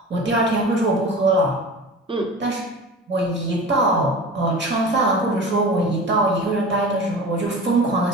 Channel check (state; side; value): normal; both; correlation 0.35